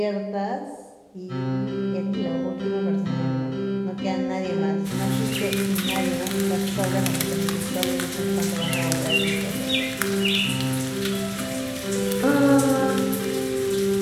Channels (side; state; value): both; identical; correlation 1.00